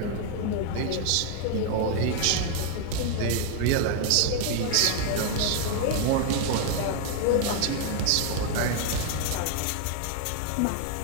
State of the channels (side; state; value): both; different; correlation 0.00